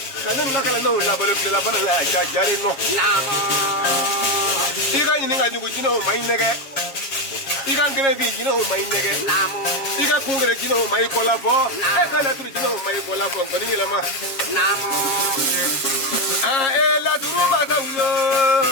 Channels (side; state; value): right; late; 7.5 ms